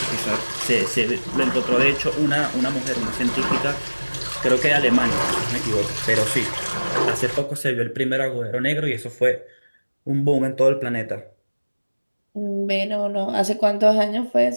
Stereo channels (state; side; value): inverted; both; correlation -1.00